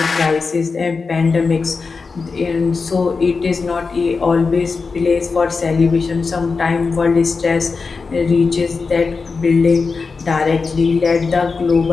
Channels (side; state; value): right; quieter; 4.6 dB